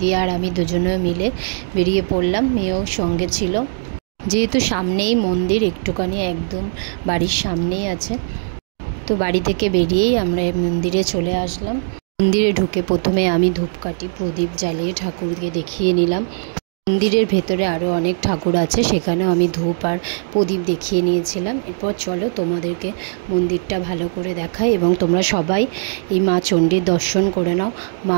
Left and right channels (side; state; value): left; silent; digital silence